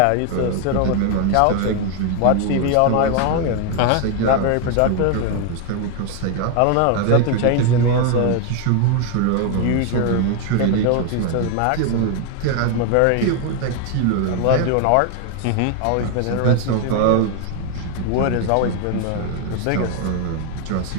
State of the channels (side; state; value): both; different; correlation 0.01